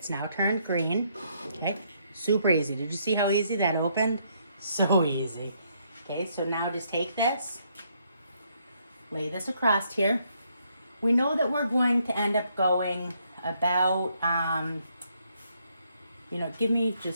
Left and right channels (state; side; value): inverted; both; correlation -0.72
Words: now turned green. Okay, super easy. Did you see how easy that opened? So easy. Okay, so now just take this, lay this across here. We know that we're going to end up going about, give me